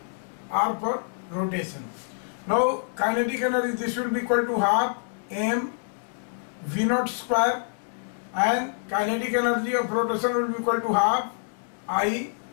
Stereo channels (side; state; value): right; silent; digital silence